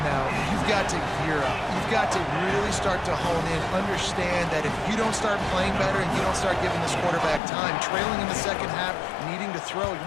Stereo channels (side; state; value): right; drops out; at 7.4 s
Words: now, you've got to gear up. You've got to really start to hone in, understand that if you don't start playing better and you don't start giving this quarterback time, trailing in the second half, needing to throw, you're